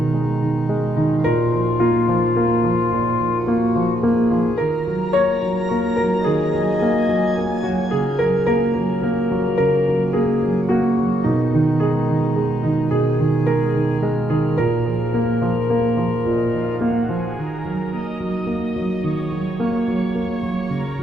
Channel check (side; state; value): both; normal; correlation 0.77